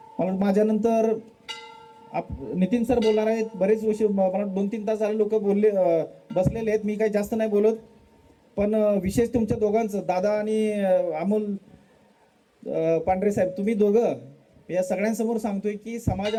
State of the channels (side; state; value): both; identical; correlation 1.00